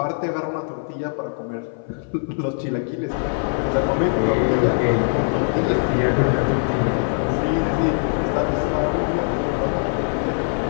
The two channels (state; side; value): silent; right; 58 dB below the other